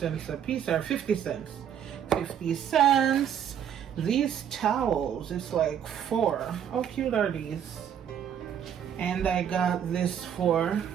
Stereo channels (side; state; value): left; quieter; 9.0 dB